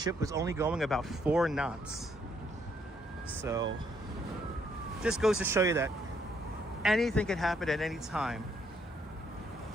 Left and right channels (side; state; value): both; normal; correlation 0.71